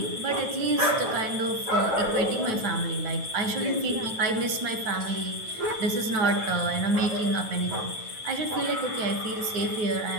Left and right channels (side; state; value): left; late; 9.2 ms